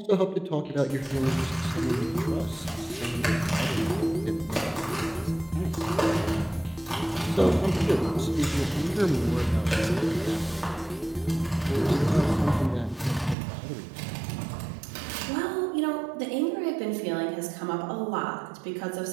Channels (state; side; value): drops out; left; at 13.4 s